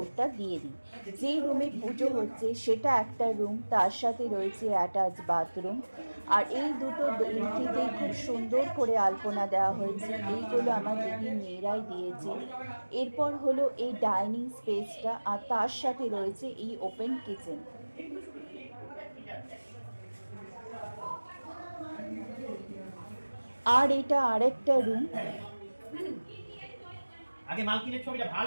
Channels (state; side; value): inverted; both; correlation -1.00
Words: দিয়ে দিই। যেই রুমে পুজো হচ্ছে সেটা একটা রুম, তার সাথে রয়েছে অ্যাটাচ বাথরুম। আর এই দুটো এন্ট্রিতেই খুব সুন্দর করে আলপনা দেওয়া হয়েছে, এইগুলো আমার দিদির মেয়েরাই দিয়েছে। এরপর হলো এই ডাইনিং স্পেসটা, আর তার সাথে রয়েছে এই ওপেন কিচেন। আর এটা আরেকটা রুম। আগে মালকিনের ছবিটা